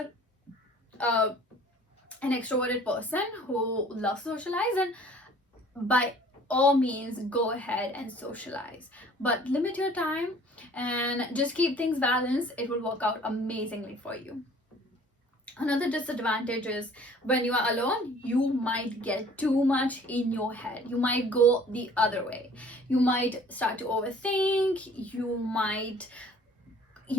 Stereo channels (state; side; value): normal; both; correlation 0.52